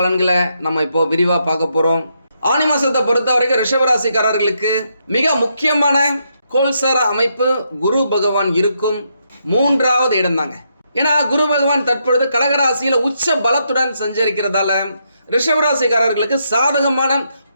நம்ம இப்போ விரிவாக பார்க்க போகிறோம். ஆனி மாதத்தை பொறுத்த வரைக்கும் ரிஷபராசிக்காரர்களுக்கு மிக முக்கியமான கோல்சார அமைப்பு குரு பகவான் இருக்கும் 3வது இடம் தாங்க. ஏன்னா குரு பகவான் தற்பொழுது கடகராசியில் உச்ச பலத்துடன் சஞ்சரிக்கிறதால ரிஷபராசிக்காரர்களுக்கு சாதகமான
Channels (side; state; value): both; inverted; correlation -0.78